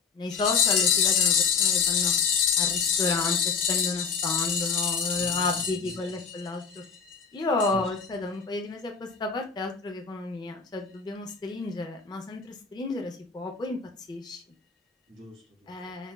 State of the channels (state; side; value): quieter; right; 5.6 dB